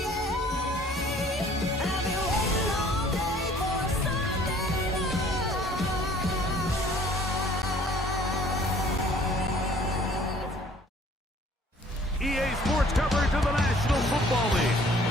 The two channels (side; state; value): both; normal; correlation 0.55